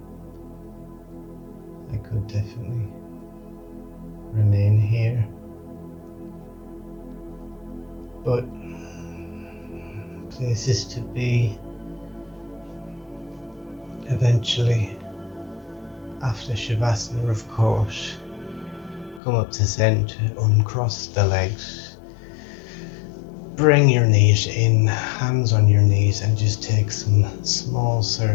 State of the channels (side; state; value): right; drops out; at 19.2 s